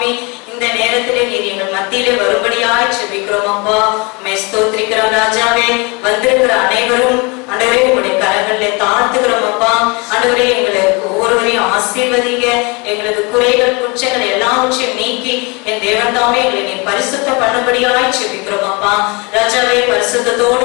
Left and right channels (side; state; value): right; quieter; 28.9 dB